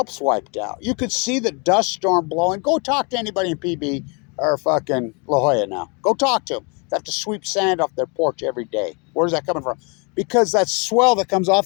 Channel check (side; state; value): right; quieter; 33.1 dB